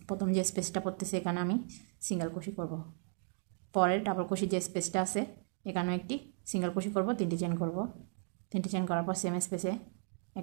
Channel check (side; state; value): left; silent; 54 dB below the other